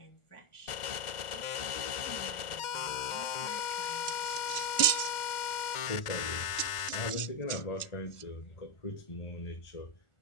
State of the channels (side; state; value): right; late; 1.4 ms